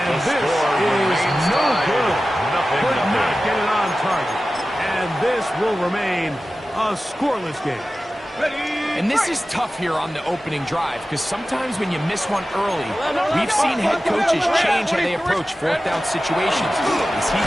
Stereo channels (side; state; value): both; normal; correlation 0.95